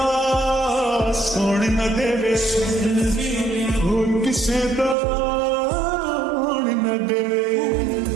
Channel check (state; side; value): drops out; left; at 5.0 s